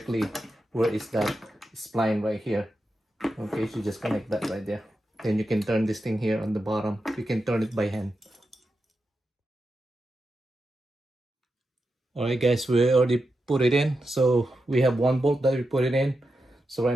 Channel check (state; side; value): normal; both; correlation 0.88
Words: where is that spline right here. Okay, so just connect that right there. Then you can turn this thing here on the bottom. You can turn it by hand. All right guys, we already put it in. So we have one bolt that we put it in. So